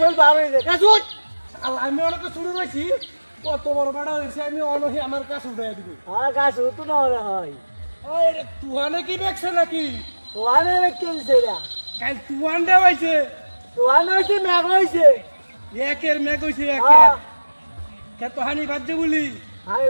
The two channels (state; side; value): inverted; both; correlation -1.00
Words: বার হয়েছে গাছ উঠ আমি অনেক শুরু হয়েছি কত বড় বেড়া হয়েছে আমি অনহি আমার কাছে উঠাই দিবি হ্যাঁ গাছ উঠু না হলে হয় তুহানে কি দেখছে নাকি তোয়ানে কেলছে না কাল তুহান দে হয়েছে তোয়ানে হয়েছে মেঘ হয়েছে একের মেঘ হয়েছে হ্যাঁ একের কে তো হানি বাদ বলি আমি